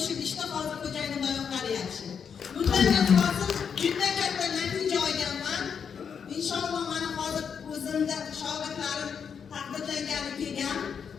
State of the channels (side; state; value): right; quieter; 6.9 dB